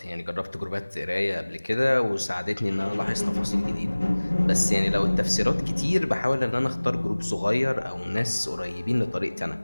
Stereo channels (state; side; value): inverted; both; correlation -1.00